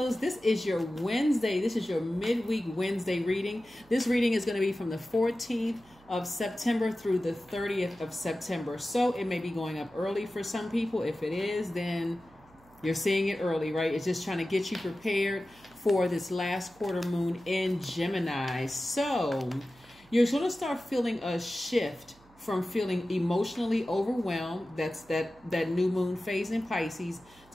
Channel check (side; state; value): right; noise; hum, 28 dB below the sound